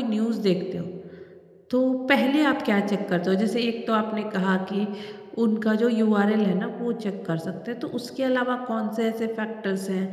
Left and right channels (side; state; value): both; identical; correlation 1.00